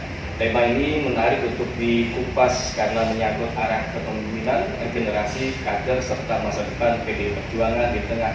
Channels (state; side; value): identical; both; correlation 1.00